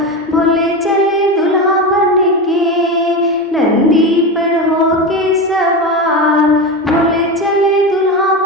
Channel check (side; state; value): both; normal; correlation 0.20